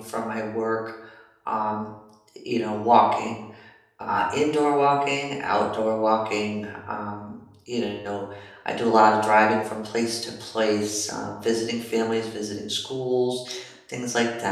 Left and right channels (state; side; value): identical; both; correlation 1.00